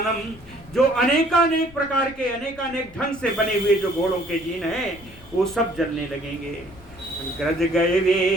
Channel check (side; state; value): left; noise; rumble, 22 dB below the sound